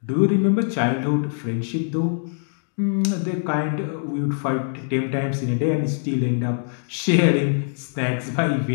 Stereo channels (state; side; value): silent; right; digital silence